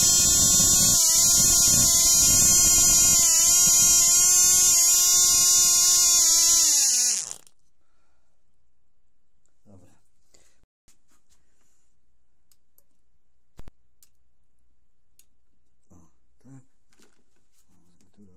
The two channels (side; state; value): both; identical; correlation 1.00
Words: Dobra. O, tak. O, tu